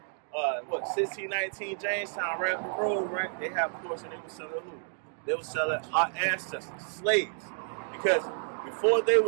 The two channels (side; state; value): left; silent; digital silence